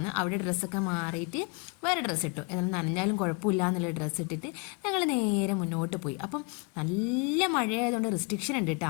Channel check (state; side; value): quieter; right; 29.8 dB